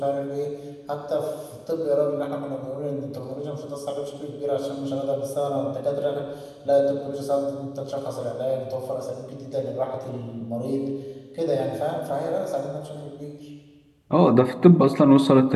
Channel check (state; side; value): identical; both; correlation 1.00